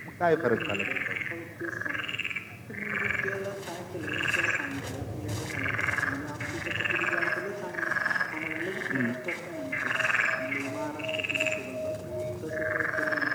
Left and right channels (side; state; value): both; identical; correlation 1.00